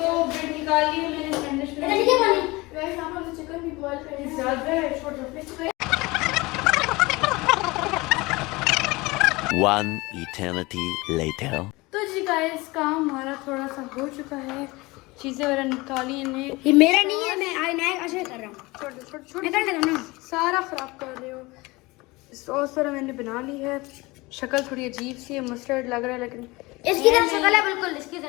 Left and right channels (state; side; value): quieter; right; 22.6 dB